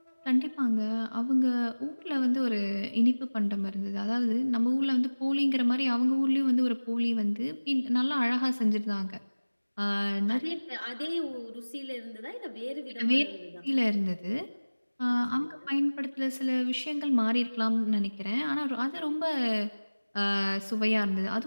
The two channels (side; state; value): both; inverted; correlation -1.00